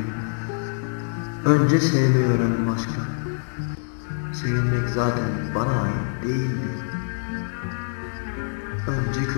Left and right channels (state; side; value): silent; right; digital silence